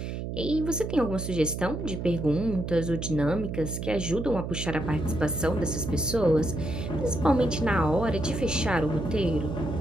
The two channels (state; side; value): noise; right; hum, 5 dB below the sound